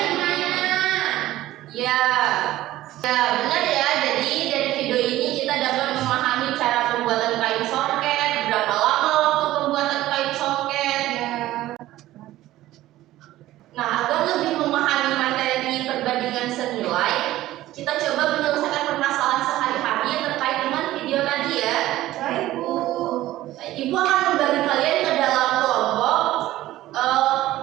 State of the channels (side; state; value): left; quieter; 15.4 dB